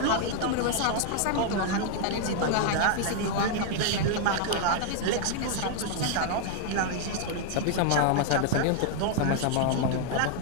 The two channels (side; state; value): both; different; correlation 0.00